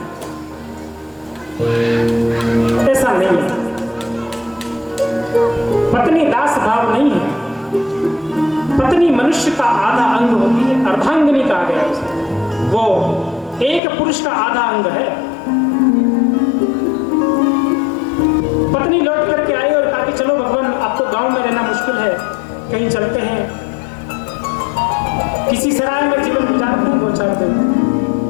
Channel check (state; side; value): drops out; right; at 13.8 s